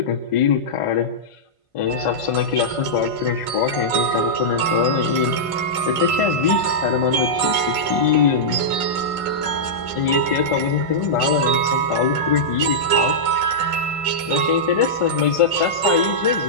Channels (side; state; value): right; late; 1.5 ms